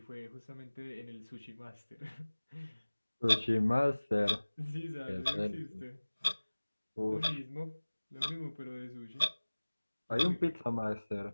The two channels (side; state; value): both; inverted; correlation -1.00